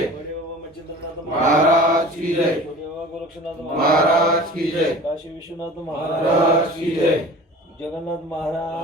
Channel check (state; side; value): normal; both; correlation 0.40